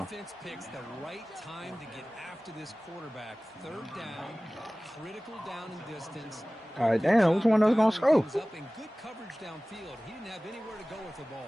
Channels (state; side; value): normal; both; correlation 0.98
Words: defense picks the right time to get after this quarterback. 3rd down, critical down in distance. All right, damn. Which one of us going to score? Up in good coverage downfield. He didn't have anywhere to go with the